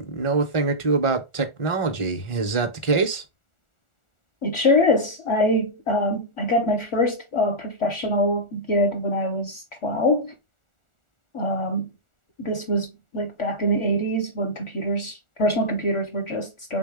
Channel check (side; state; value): right; late; 1.4 ms